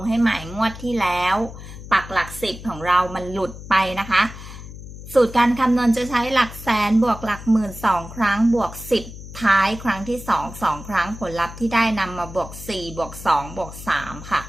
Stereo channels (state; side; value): noise; left; hum, 13 dB below the sound